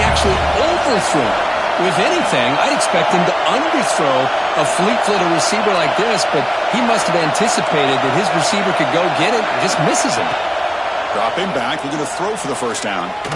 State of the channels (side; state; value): both; identical; correlation 1.00